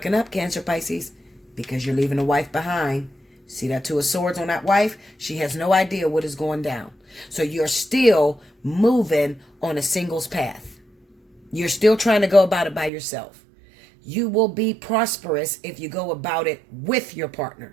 up, Cancer, Pisces, because you're leaving the wife behind. See that Two of Swords on that wife? She has no idea what is going down. So you're still moving on a singles path. You're still trying to go about it by yourself. You will be prosperous if you go about it with your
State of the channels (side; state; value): left; drops out; at 12.9 s